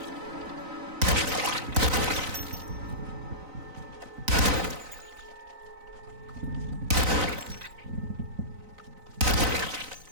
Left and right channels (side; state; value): left; late; 3.9 ms